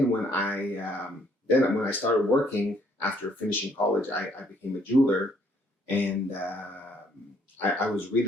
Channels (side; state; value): both; normal; correlation 0.66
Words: when I started working after finishing college, I became a jeweler, and I was